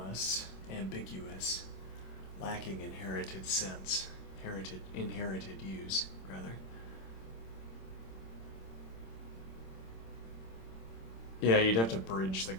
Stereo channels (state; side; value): late; right; 26 ms